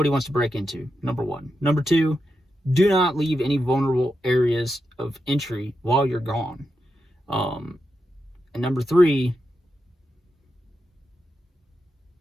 wants to break into, number one. Number two, do not leave any vulnerable areas of entry while you're gone. And number three,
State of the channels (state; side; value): normal; both; correlation 0.87